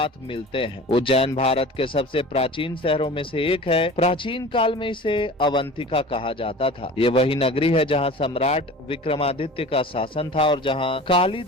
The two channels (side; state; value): both; normal; correlation 0.39